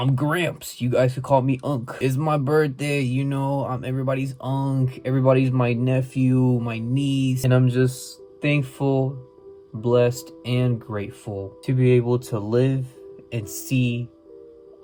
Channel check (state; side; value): identical; both; correlation 1.00